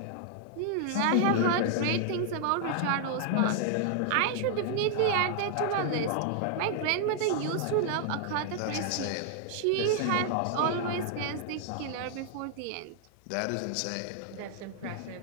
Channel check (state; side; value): different; both; correlation 0.00